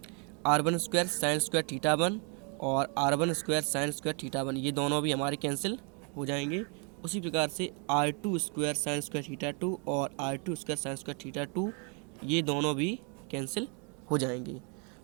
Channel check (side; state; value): left; quieter; 36.7 dB